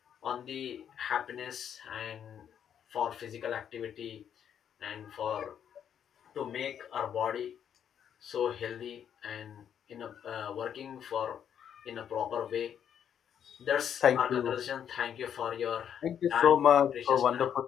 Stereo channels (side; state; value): right; quieter; 8.8 dB